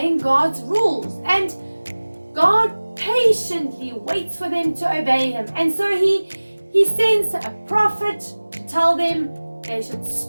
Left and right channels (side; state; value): both; inverted; correlation -1.00